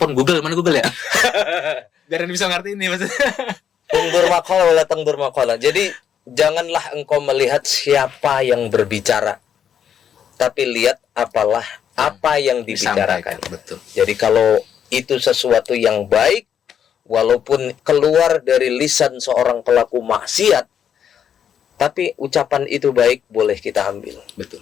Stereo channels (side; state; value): right; quieter; 8.6 dB